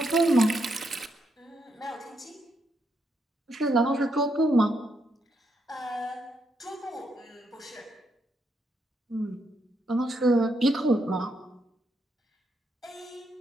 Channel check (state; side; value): normal; both; correlation 0.79